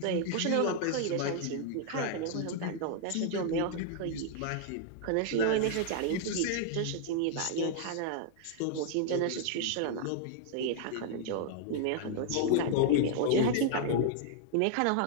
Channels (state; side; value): different; both; correlation -0.01